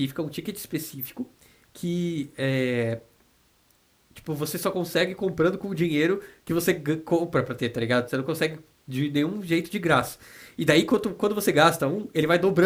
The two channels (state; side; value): identical; both; correlation 1.00